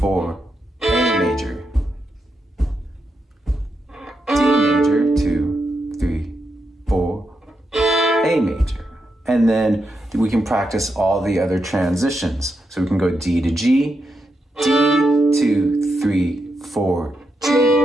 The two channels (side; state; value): both; normal; correlation 0.84